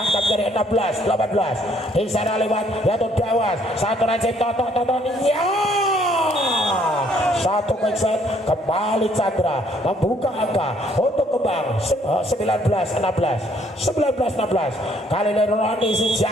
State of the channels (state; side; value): normal; both; correlation 0.65